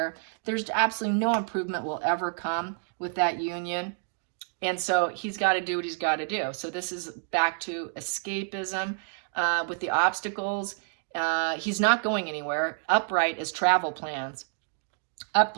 There's absolutely no improvement will ever come with that union. And so he's got to do what he's got to do. So this is back to escapism with the obstacles. He's not going anywhere. Upright is travel plans.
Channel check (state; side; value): silent; left; digital silence